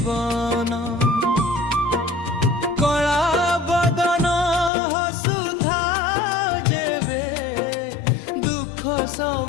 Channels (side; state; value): right; drops out; at 4.7 s